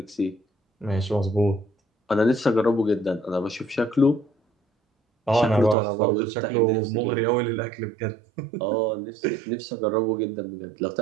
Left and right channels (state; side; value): drops out; left; at 5.8 s